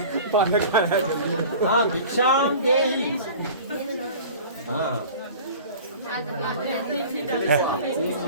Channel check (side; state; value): both; inverted; correlation -0.41